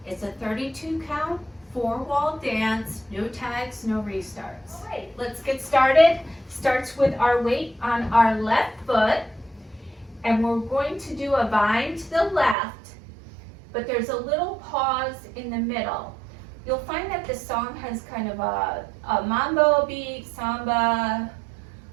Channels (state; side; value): drops out; left; at 12.6 s